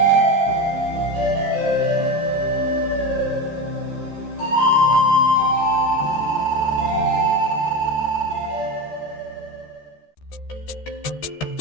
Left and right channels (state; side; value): late; right; 13 ms